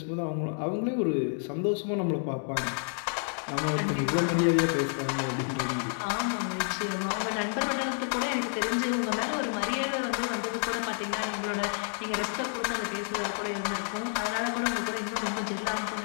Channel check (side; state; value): right; silent; 55 dB below the other